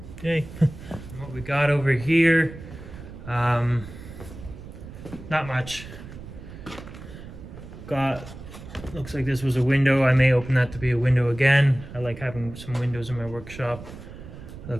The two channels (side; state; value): right; noise; rumble, 14 dB below the sound